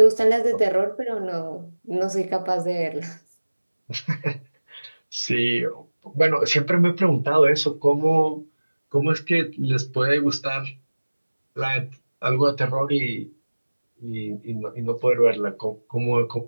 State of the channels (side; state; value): both; inverted; correlation -1.00